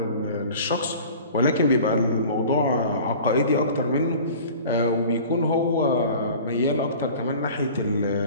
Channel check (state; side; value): inverted; both; correlation -0.43